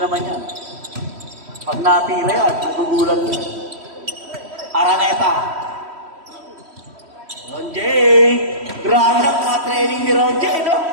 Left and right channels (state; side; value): late; left; 3.1 ms